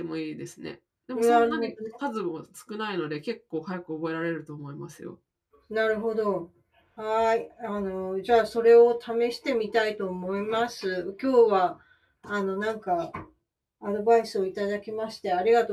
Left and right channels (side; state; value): both; identical; correlation 1.00